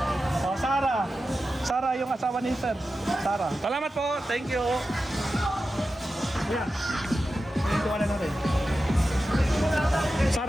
Oh, Sara. Sara yung asawa ni Sir. Sara. Salamat po, thank you. Ayan. Ito wala natin.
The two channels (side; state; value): both; normal; correlation 0.92